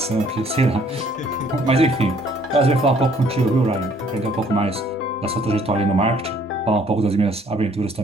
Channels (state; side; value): normal; both; correlation 0.61